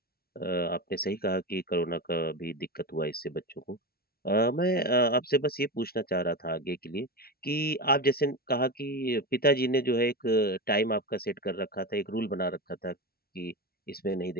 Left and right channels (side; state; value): right; late; 0.44 ms